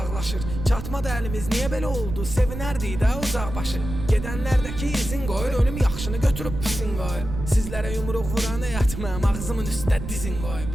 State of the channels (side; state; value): right; noise; rumble, 7 dB below the sound